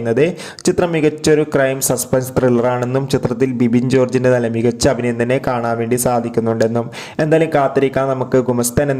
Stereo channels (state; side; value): identical; both; correlation 1.00